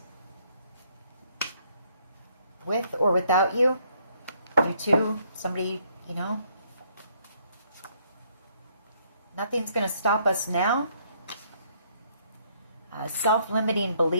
With or without you? You too? Somebody, you know? Nothing's going to stop us now. Self-limiting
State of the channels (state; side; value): inverted; both; correlation -0.68